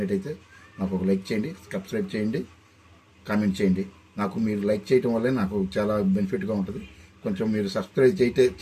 నాకు ఒక లైక్ చేయండి, సబ్స్క్రైబ్ చేయండి, కామెంట్ చేయండి. నాకు మీరు లైక్ చేయడం వల్లే నాకు చాలా బెనిఫిట్గా ఉంటుంది. కొంచెం మీరు సబ్స్క్రైబ్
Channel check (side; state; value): both; identical; correlation 1.00